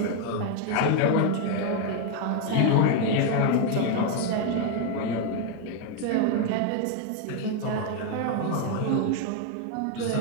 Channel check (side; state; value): both; different; correlation 0.01